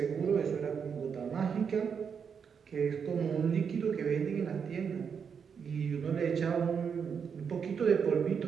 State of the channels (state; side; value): quieter; left; 6.7 dB